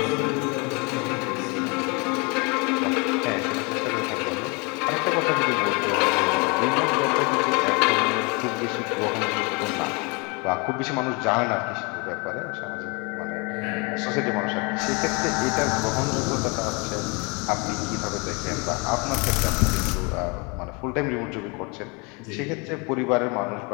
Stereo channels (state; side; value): quieter; right; 30.4 dB